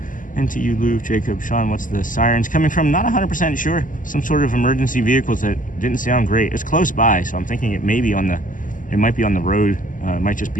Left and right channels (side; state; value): right; late; 0.38 ms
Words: And to you, Lou, Jacob, Sean, what's the sirens coming from? Not 100% sure. Some sort of emergency vehicles that didn't sound great. It's close by, so I'm thinking it might be on the road. It might just